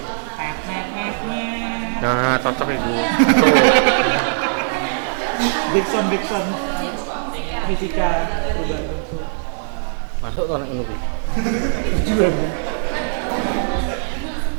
Nah, cocok itu. Backsound fisika. Masuk kalau ini.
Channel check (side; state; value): left; silent; digital silence